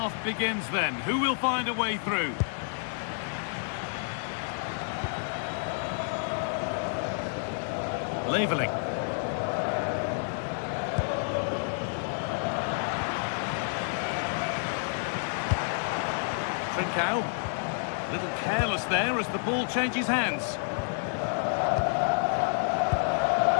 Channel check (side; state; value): right; silent; digital silence